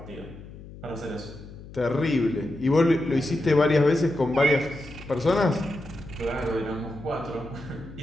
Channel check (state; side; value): noise; left; hum, 16 dB below the sound